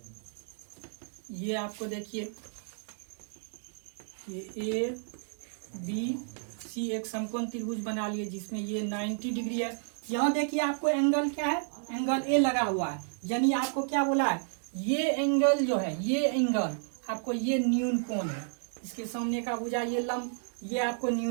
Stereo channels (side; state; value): left; silent; digital silence